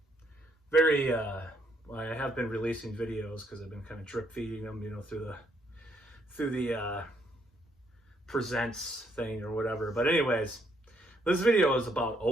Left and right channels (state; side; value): normal; both; correlation 0.72